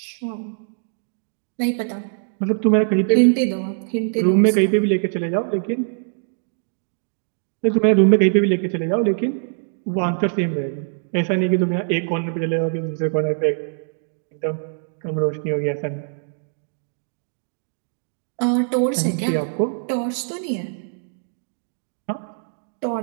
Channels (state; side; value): silent; left; digital silence